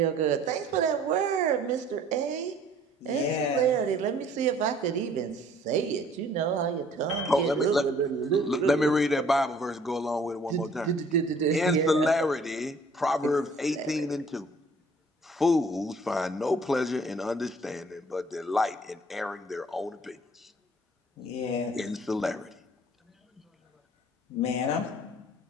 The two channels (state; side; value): normal; both; correlation 0.56